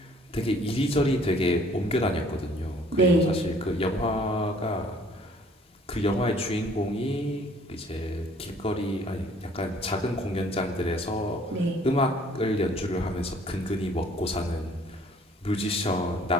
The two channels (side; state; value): both; normal; correlation 0.57